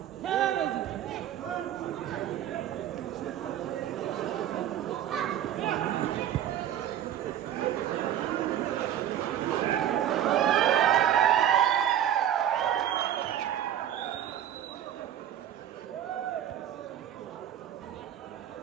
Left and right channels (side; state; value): left; quieter; 10.8 dB